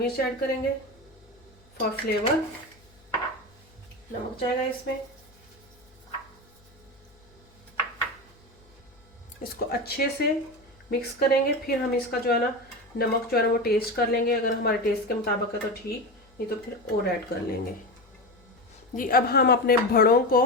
ऐड करेंगे फॉर फ्लेवर। नमक जाएगा इसमें। इसको अच्छे से मिक्स करेंगे। फिर हम इसका जो है ना नमक जो है ना वो टेस्ट कर लेंगे। अगर हमारे टेस्ट के मुताबिक है तो ठीक, नहीं तो फिर और ऐड कर लेंगे। जी अब हम अपने भड़ों को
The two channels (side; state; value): left; noise; hum, 29 dB below the sound